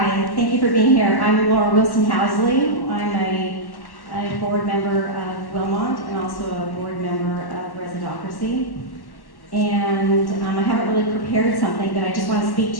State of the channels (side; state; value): right; late; 1.1 ms